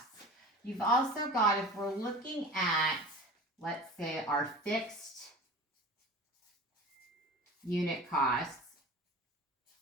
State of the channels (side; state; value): both; normal; correlation 0.37